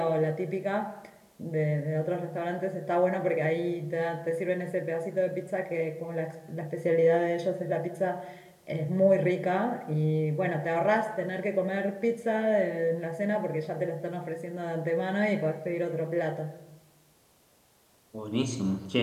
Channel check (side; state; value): both; identical; correlation 1.00